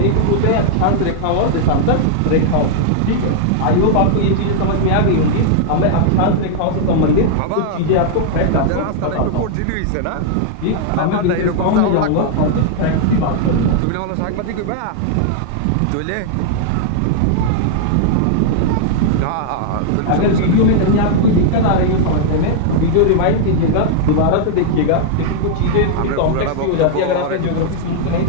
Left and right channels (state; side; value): different; both; correlation -0.01